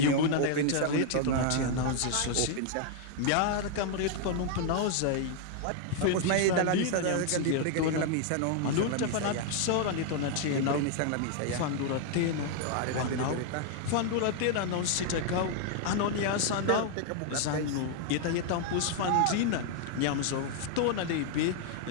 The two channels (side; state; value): both; different; correlation 0.00